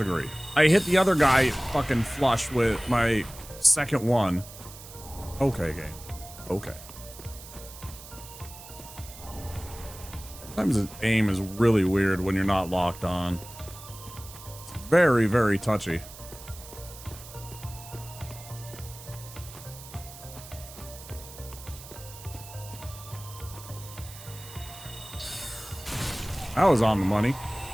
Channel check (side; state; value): right; noise; hiss, 16 dB below the sound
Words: I hit the other guy fucking flush with my second one. Okay, game. Okay. Sometimes the aim is really weird when you're not locked on. It's very, very touchy. That was on the money.